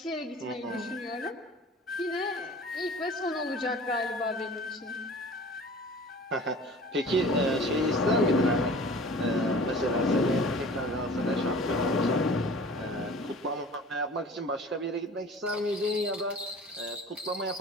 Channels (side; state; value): both; normal; correlation 0.43